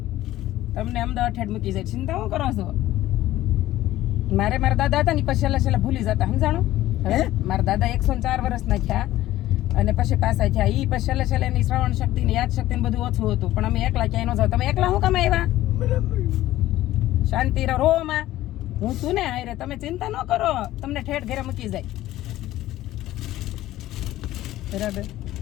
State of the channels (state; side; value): quieter; right; 15.0 dB